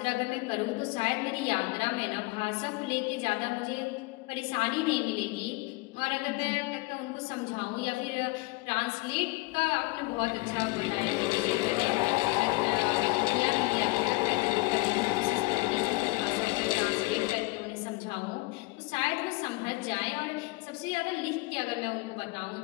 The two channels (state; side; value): quieter; right; 24.0 dB